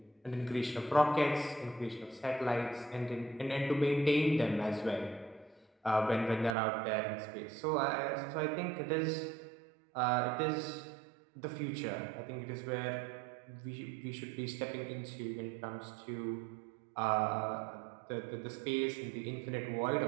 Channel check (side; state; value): left; drops out; at 6.6 s